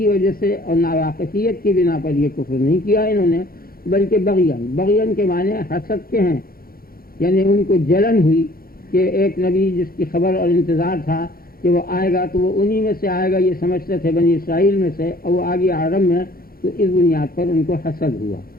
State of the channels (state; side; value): late; right; 0.43 ms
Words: وجہ سے اور ناواقفیت کی بنا پر یہ کفر نہیں کیا انہوں نے، بلکہ بغیاً. بغیاً کے معنی حسد کے ہیں، یعنی ان کو جلن ہوئی کہ ایک نبی جس کی خبر اور انتظار تھا کہ وہ آئے گا تو وہ انہی میں سے آئے گا، یہ سمجھتے تھے بنی اسرائیل میں سے، اور وہ آگے عرب میں، تو اس بنیاد پر ان کو حسد ہوا.